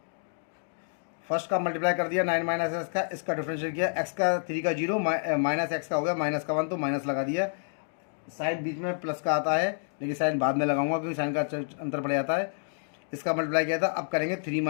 फर्स्ट का मल्टीप्लाई कर दिया 9 माइनस एक्स का, इसका डिफरेंशियल किया, एक्स का 3 का 0 माइनस एक्स का हो गया माइनस का 1, तो माइनस लगा दिया। साइन बीच में प्लस का आता है, लेकिन साइन बाद में लगाऊंगा क्योंकि साइन का अंतर पड़ जाता है। इसका मल्टीप्लाई किया था, अब करेंगे 3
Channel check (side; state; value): right; silent; digital silence